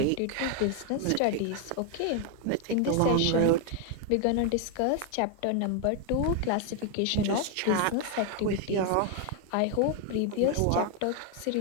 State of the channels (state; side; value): different; both; correlation 0.01